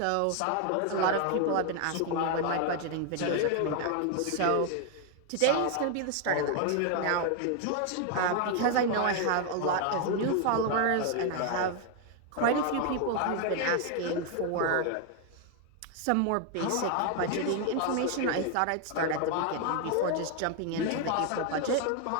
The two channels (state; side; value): different; both; correlation 0.00